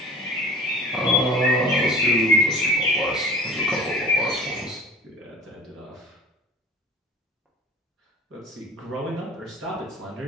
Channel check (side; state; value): both; normal; correlation 0.41